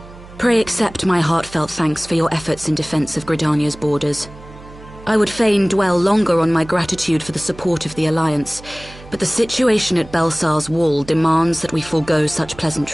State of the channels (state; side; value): noise; right; hum, 19 dB below the sound